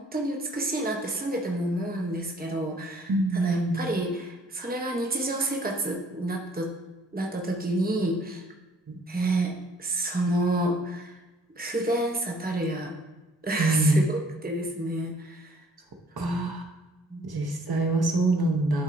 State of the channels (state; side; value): normal; both; correlation 0.59